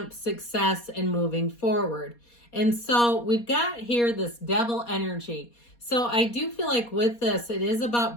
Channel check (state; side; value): late; right; 4.2 ms